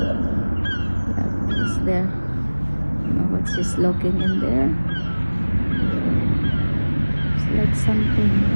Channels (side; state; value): both; inverted; correlation -1.00